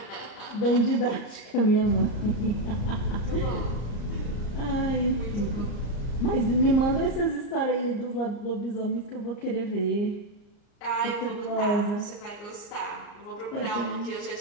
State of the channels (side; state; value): right; late; 34 ms